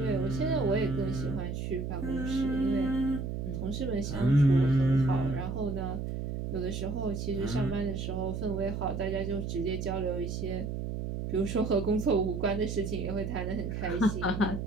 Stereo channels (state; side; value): noise; right; hum, 4 dB below the sound